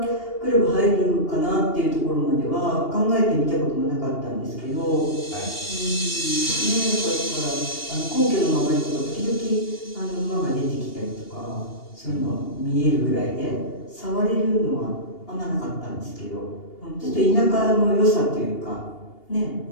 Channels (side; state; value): right; late; 2.8 ms